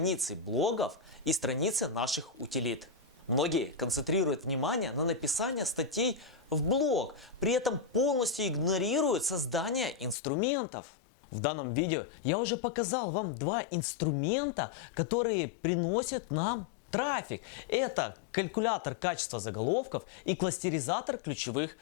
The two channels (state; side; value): drops out; right; at 10.2 s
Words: блогов и страницы наших утилит. Многие концентрируют внимание на написании статей в блог, при этом полностью игнорируют создание инструментов. В данном видео я уже показал вам два инструмента, которые приносят нам трафик. Это калькулятор качества заголовков и кластеризатор ключевых